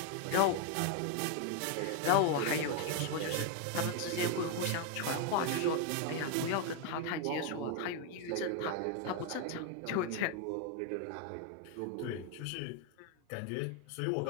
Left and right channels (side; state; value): both; different; correlation 0.01